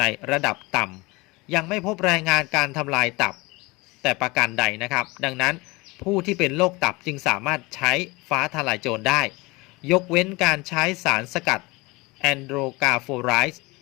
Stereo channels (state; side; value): quieter; right; 24.0 dB